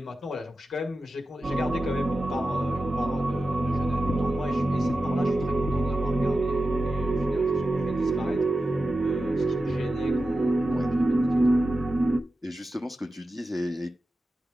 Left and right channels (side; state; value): both; normal; correlation 0.92